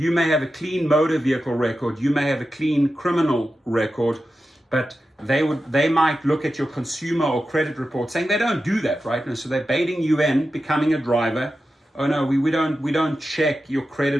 may have a clean motor vehicle record, you may have a clean criminal record, but they might look at your consumer or credit report saying they don't do that, right? And so they're baiting you in becoming a driver. Oh no, we don't check your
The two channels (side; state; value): both; normal; correlation 0.91